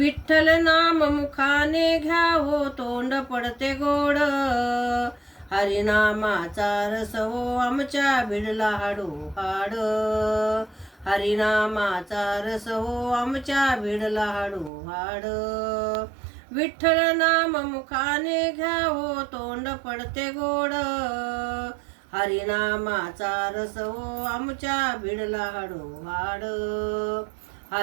नाम मुखाने घ्यावो तोंड पडते गोड, हरिनामाचा रस हो आमच्या भिडला हाडो हाड. हरिनामाचा रस हो आमच्या भिडला हाडो हाड. विठ्ठल नाम मुखाने घ्यावो तोंड पडते गोड, हरिनामाचा रस हो आमच्या भिडला हाडो हाड.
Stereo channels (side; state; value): left; drops out; at 14.7 s